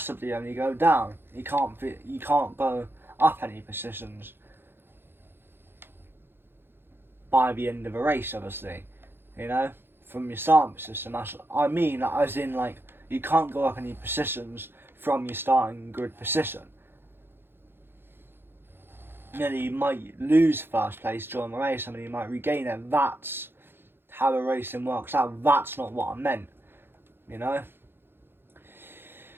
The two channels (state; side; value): late; left; 0.10 ms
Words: only go down. You can't go up any positions by the end of a race, obviously. You know, from your starting position. I mean, as in, like, you can't go up any positions from your starting grid position. You know, you might lose first place during the race, I mean, you might regain it. That's how the racing works out. That's not what I meant, you know.